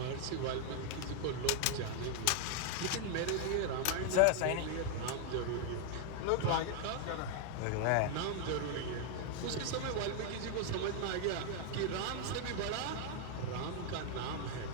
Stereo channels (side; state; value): both; different; correlation 0.00